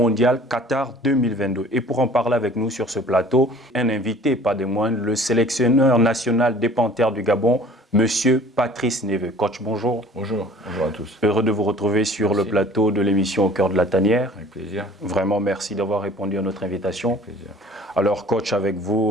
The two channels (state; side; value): normal; both; correlation 0.49